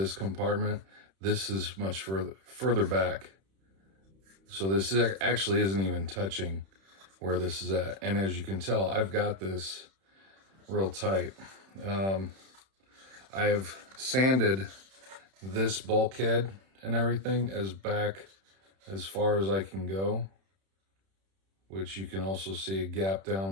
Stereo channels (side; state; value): left; late; 31 ms